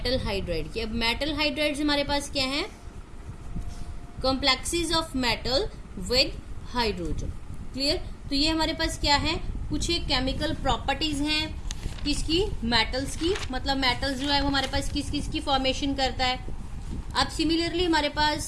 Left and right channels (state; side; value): identical; both; correlation 1.00